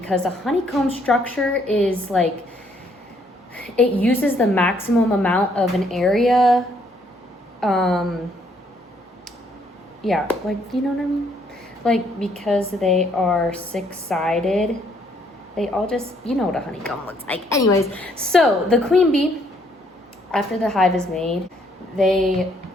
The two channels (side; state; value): both; normal; correlation 0.68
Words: a honeycomb structure is like, it uses the maximum amount of an area. Yeah, like, you know what I mean? Like, because they are six-sided, they all just, you know what a honeycomb looks like. Anyways, so the queen bee, after the hive is made, they